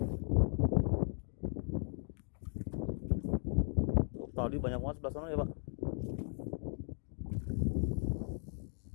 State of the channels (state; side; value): silent; right; 53 dB below the other